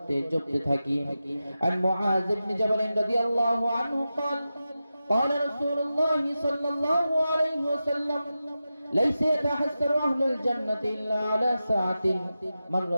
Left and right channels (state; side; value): inverted; both; correlation -0.92